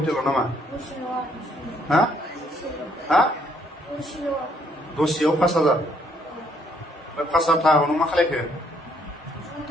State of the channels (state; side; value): normal; both; correlation 0.68